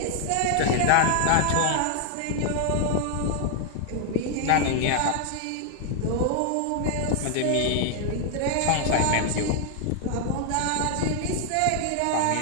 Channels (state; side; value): different; both; correlation 0.00